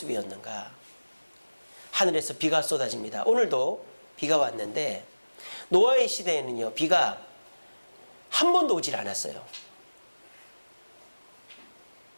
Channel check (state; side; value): inverted; both; correlation -1.00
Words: 하늘에서 비가 쏟아집니다. 오늘도 비가 왔는데 노아의 시대에는요, 비가 한 번도 오질 않았어요.